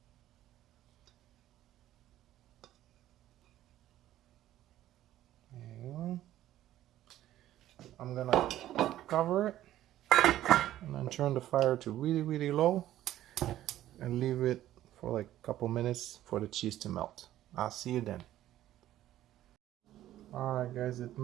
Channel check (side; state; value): left; quieter; 13.4 dB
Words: There you go. I'm gonna cover it and then turn the fire to really low and leave it for like a couple minutes for the cheese to melt. I'll see you then. Alright guys, it